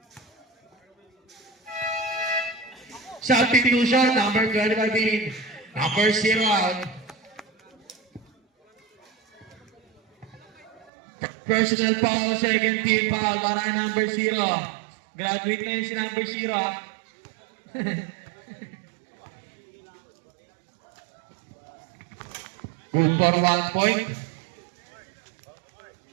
Substitution, number 25 in. Number 0 out. Personal foul, second team foul para kay number 0. Graduate na yun si number 0. Good for 1 point.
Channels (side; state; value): left; drops out; at 10.9 s